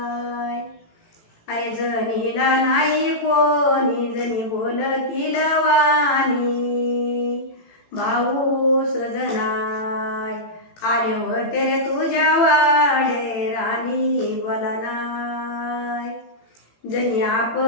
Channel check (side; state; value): right; late; 18 ms